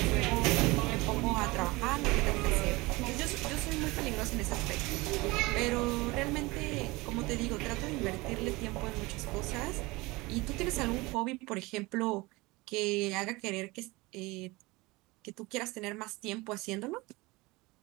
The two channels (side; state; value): left; quieter; 22.7 dB